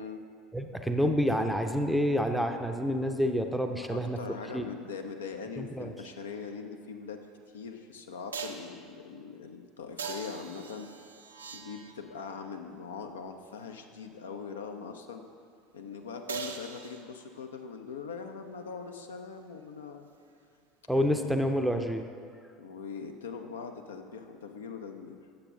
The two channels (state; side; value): normal; both; correlation 0.62